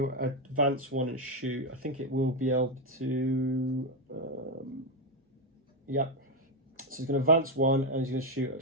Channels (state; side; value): normal; both; correlation 0.05